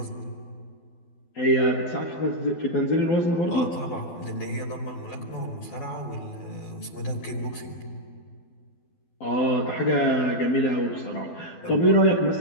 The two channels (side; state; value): right; late; 12 ms